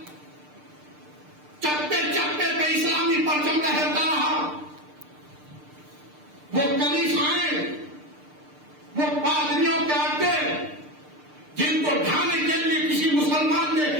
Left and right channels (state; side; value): late; left; 6.7 ms